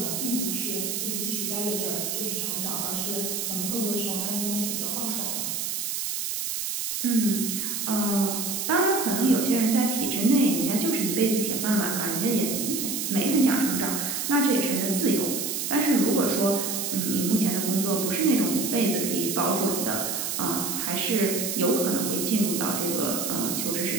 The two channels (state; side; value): noise; right; hiss, 2 dB below the sound